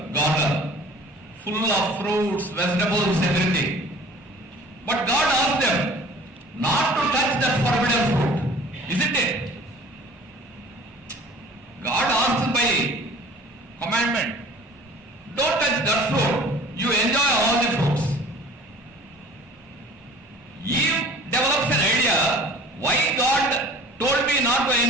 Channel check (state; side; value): normal; both; correlation 0.47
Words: garden, full of fruits, vegetables, everything. But God asked them not to touch that forbidden fruit, isn't it? God asked by commandment, don't touch that fruit, you enjoy all the fruits. Eve develops an idea, why God told me not to